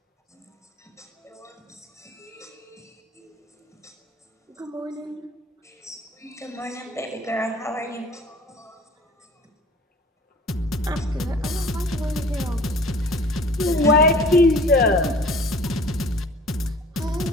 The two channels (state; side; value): normal; both; correlation 0.47